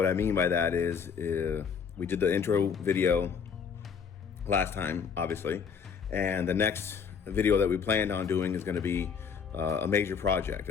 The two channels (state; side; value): quieter; right; 6.6 dB